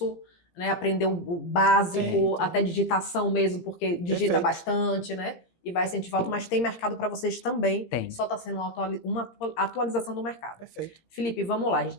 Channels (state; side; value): late; right; 17 ms